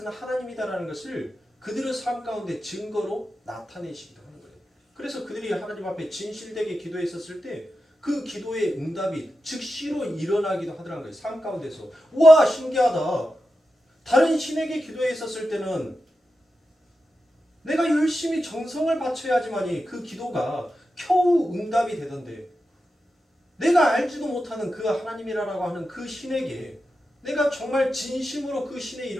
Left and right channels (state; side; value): normal; both; correlation 0.90